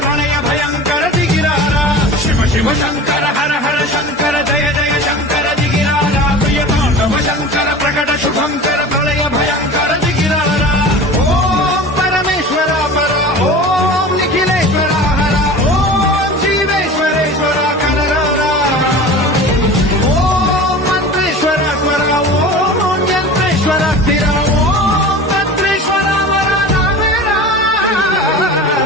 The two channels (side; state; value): both; normal; correlation 0.36